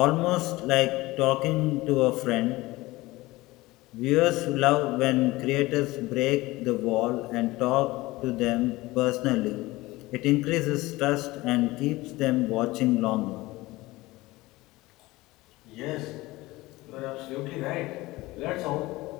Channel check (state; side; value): quieter; right; 19.8 dB